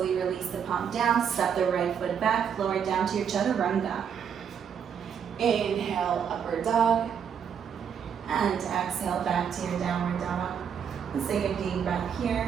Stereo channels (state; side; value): quieter; left; 7.7 dB